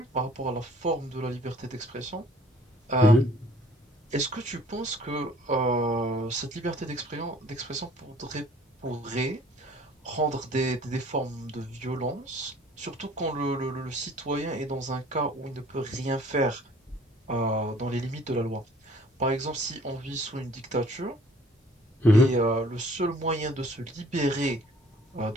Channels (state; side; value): normal; both; correlation 0.54